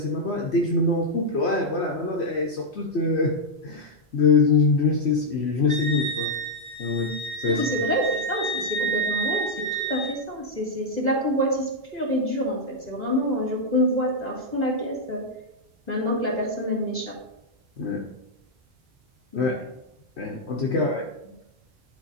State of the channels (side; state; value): both; normal; correlation -0.02